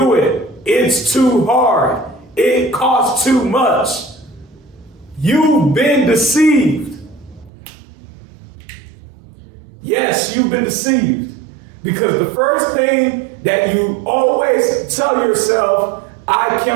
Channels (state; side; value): drops out; left; at 7.5 s